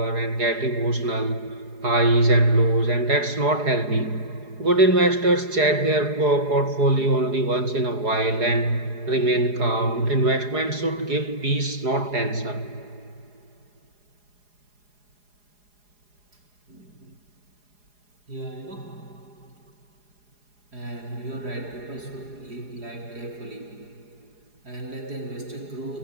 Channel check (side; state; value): left; late; 4.8 ms